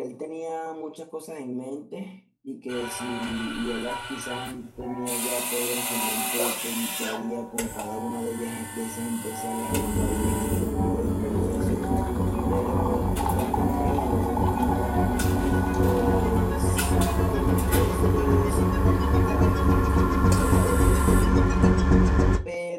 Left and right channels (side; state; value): both; identical; correlation 1.00